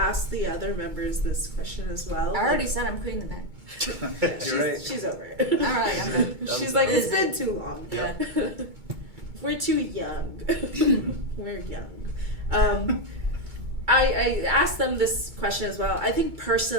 asked the other members this question as well. I already said I'm quitting the band. You're right. She's over it. Alright, I'm done. She's I'm like, done. it's been too long. Yeah. We're too young. We're young. I asked them this question as well. I think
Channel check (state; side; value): late; left; 2.2 ms